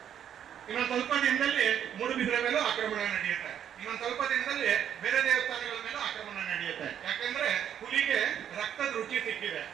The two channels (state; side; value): quieter; left; 9.4 dB